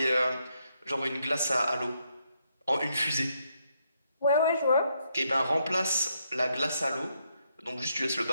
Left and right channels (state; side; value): inverted; both; correlation -0.77